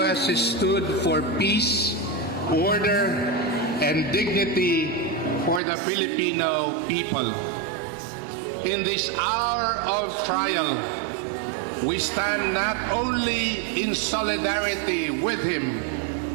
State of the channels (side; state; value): left; drops out; at 5.6 s